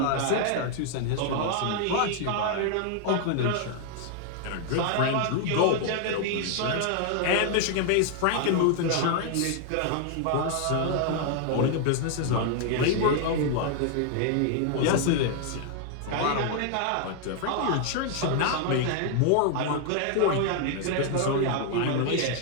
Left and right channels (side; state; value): both; different; correlation 0.00